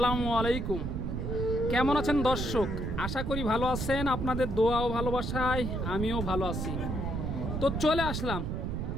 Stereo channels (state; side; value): noise; right; rumble, 2 dB below the sound